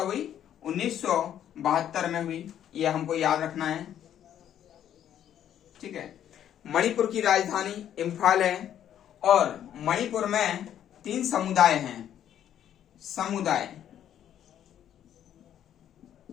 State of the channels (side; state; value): right; quieter; 10.4 dB